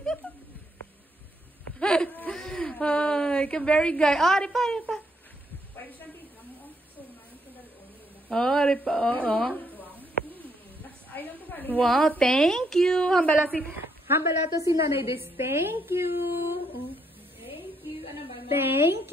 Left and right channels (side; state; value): both; normal; correlation 0.74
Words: Ay, ka-very guy. Ah, ripa, ripa. Oh, ripa, oo. Wow, thank you. Hambala to si Nanay Des. Thank you. Thank you. Ano ba? Thank